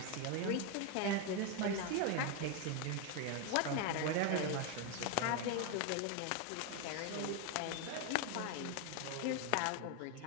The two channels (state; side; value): different; both; correlation 0.01